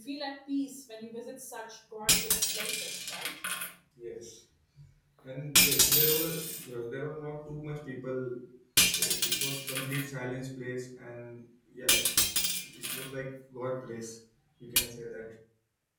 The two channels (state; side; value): identical; both; correlation 1.00